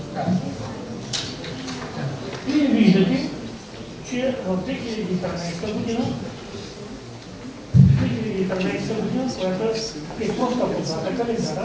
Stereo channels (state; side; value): identical; both; correlation 1.00